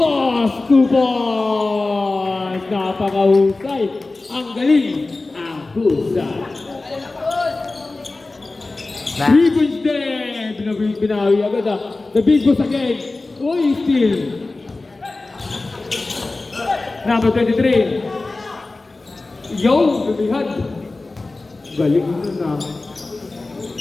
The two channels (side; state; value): right; quieter; 3.3 dB